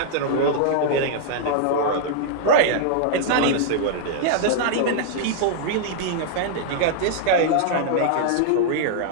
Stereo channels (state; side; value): different; both; correlation -0.01